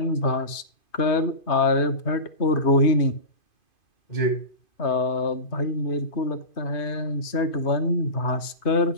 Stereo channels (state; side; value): late; right; 2.5 ms